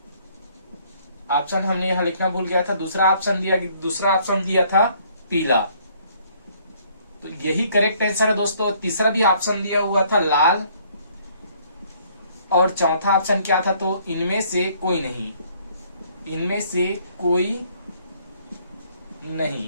ऑप्शन हमने यहाँ लिखना भूल गया था। दूसरा ऑप्शन दिया था पीला, तो यही करेक्ट आंसर है दोस्तों। तीसरा भी ऑप्शन दिया हुआ था लाल और चौथा ऑप्शन क्या था, तो इनमें से कोई नहीं, इनमें से कोई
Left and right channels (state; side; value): inverted; both; correlation -0.63